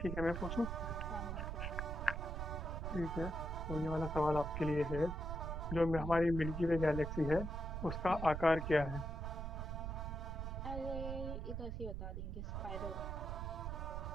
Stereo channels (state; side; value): noise; right; rumble, 4 dB below the sound